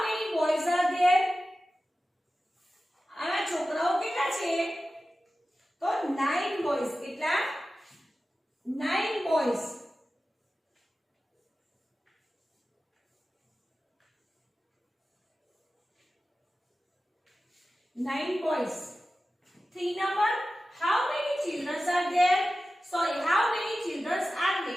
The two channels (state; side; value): normal; both; correlation 0.94